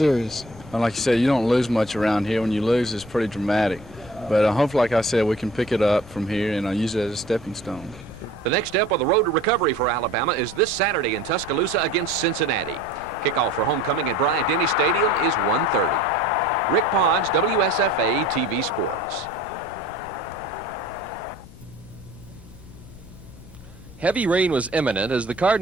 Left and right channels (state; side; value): noise; left; rumble, 18 dB below the sound